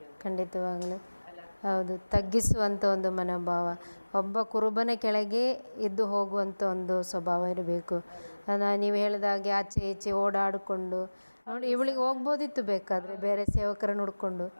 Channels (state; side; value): inverted; both; correlation -1.00